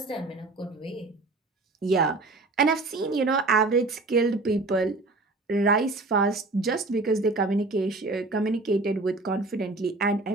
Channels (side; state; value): left; quieter; 3.3 dB